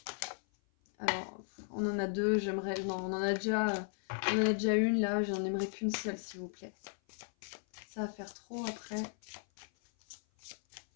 Alors, on en a deux, j'aimerais... Non, on en a déjà une, là, j'en aimerais qu'une seule, s'il vous plaît. Ça va faire trop après.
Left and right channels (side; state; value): right; silent; 54 dB below the other